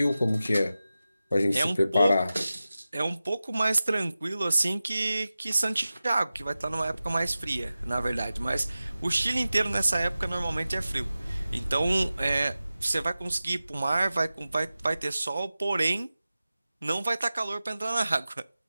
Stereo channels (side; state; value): both; inverted; correlation -0.95